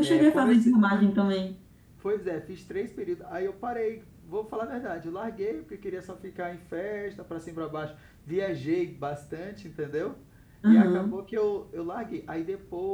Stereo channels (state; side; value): identical; both; correlation 1.00